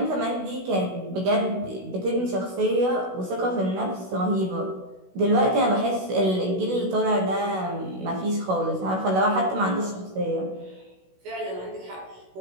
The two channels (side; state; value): left; late; 16 ms